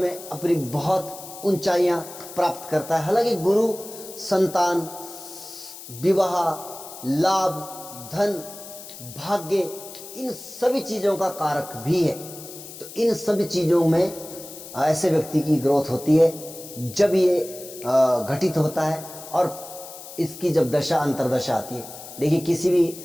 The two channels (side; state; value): left; noise; hiss, 14 dB below the sound